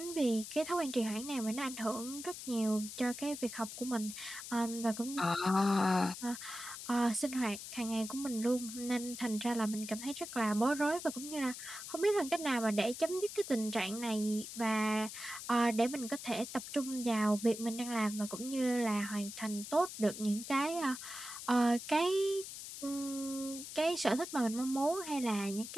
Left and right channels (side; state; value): left; noise; hiss, 10 dB below the sound